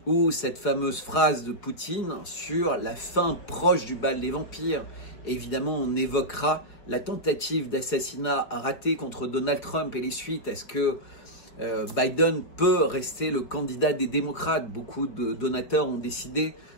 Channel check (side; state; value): right; late; 4.6 ms